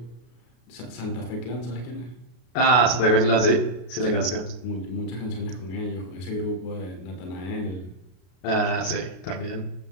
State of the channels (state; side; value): late; right; 33 ms